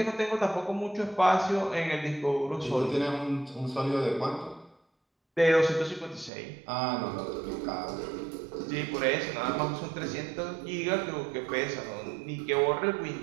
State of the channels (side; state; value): left; drops out; at 6.3 s